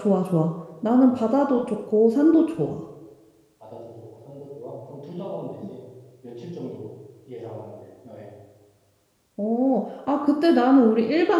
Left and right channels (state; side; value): identical; both; correlation 1.00